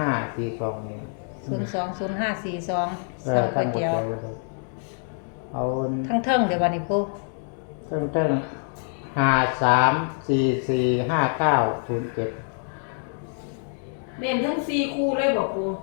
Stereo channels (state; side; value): silent; right; 56 dB below the other